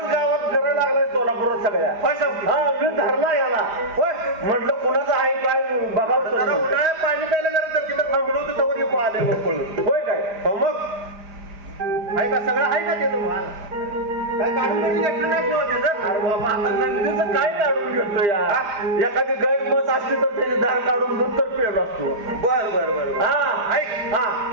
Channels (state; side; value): late; left; 5.0 ms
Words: गावात फिरायला लागलाय सोलापुरात सगळ्या. मी धरला याला. होय म्हटलं कुणाचं आहे काय बघावं. उन्हाळ्यात पाणी प्यायला जर तिथं थांबलो होतं तवर येऊ आले होय काय? हो मग आहे का सगळं आहे का त्याचं माल? काय काढून घेतलं नाही त्याचं? अरे बाबा आता नंदीचं काय काढून घेतो या? एखादी गाय मस असली तर त्याची धार काढून दूध तर पेलो असतो. बर बर बर हा ऐक हा